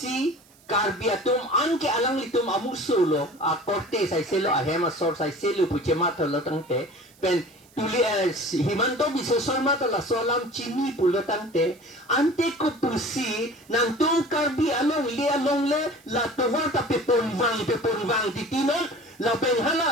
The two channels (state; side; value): noise; right; hiss, 29 dB below the sound